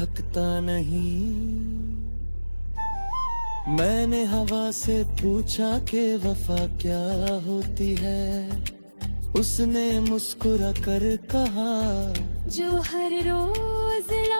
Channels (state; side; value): inverted; both; correlation -1.00